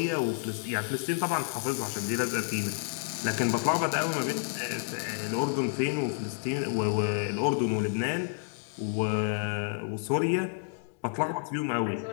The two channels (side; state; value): right; silent; digital silence